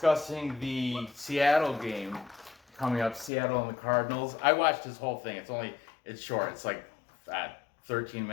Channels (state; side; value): drops out; right; at 3.3 s